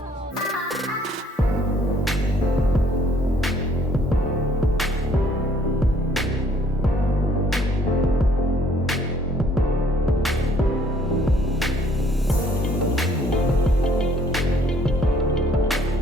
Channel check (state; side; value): normal; both; correlation 0.62